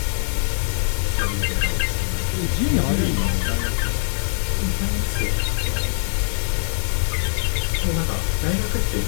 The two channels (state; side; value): silent; right; 64 dB below the other